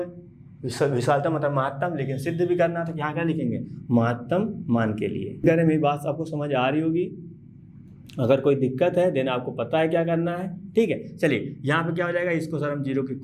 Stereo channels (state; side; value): identical; both; correlation 1.00